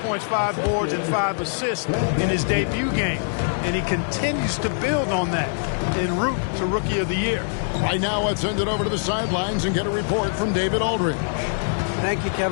5 boards, and 5 assists in his debut game. And he continues to build on that en route to Rookie of the Year. Right now, let's send it over to the sidelines and get a report from David Aldridge. Thank you,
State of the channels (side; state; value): right; silent; 61 dB below the other